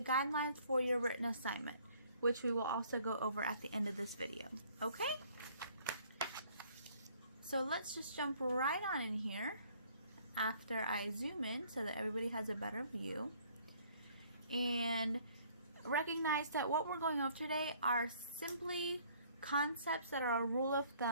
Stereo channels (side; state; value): both; inverted; correlation -0.59